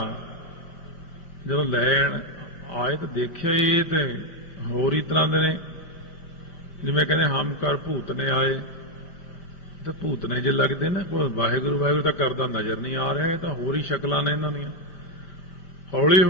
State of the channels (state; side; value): late; right; 5.7 ms